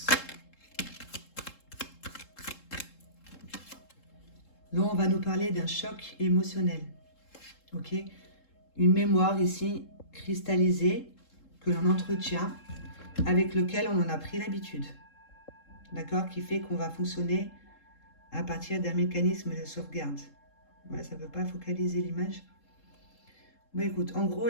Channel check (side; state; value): right; late; 3.7 ms